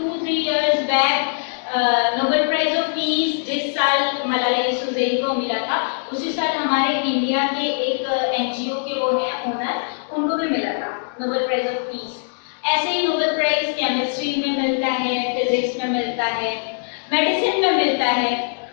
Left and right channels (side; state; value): right; silent; digital silence